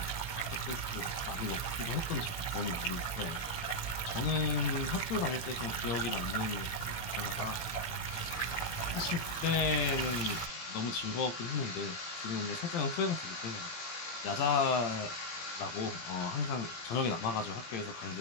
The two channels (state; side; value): late; right; 17 ms